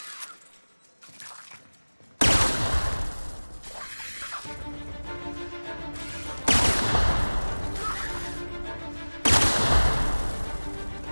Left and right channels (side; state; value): both; inverted; correlation -1.00